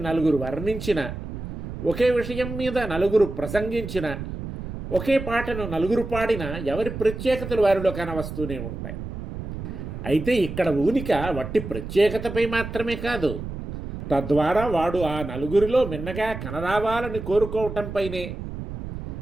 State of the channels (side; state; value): right; noise; rumble, 8 dB below the sound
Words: నలుగురు వర్ణించిన, ఒకే విషయం మీద నలుగురు ప్రసంగించిన, ఒకే పాటను నలుగురు పాడిన ఎవరి ప్రత్యేకతలు వారిలో కనవస్తూనే ఉంటాయి. అయితే ఇక్కడ ఊనిక వట్టి ప్రత్యేకతపై మాత్రమే కాదు, తద్వారా వాడు ఆ నలుగురిలో మిన్నగా కనరావాలని కోరుకోవటంపైనే.